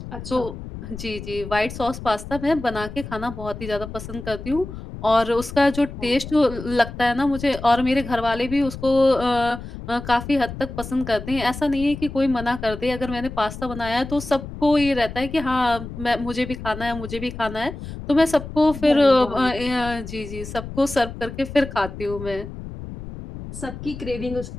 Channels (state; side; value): noise; left; rumble, 11 dB below the sound